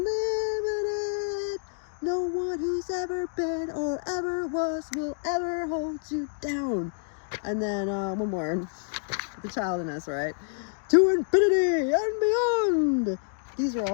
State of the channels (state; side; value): silent; right; digital silence